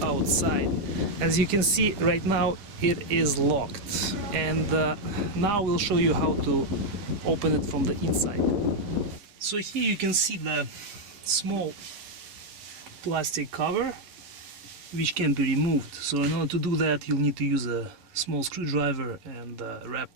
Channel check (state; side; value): late; left; 10 ms